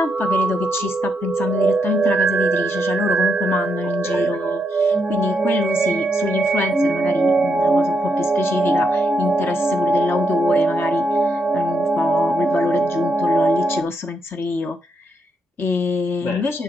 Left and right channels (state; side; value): normal; both; correlation 0.79